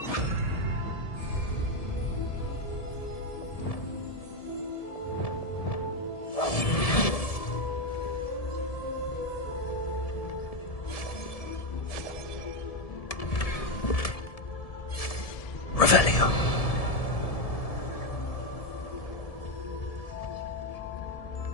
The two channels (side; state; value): right; late; 1.7 ms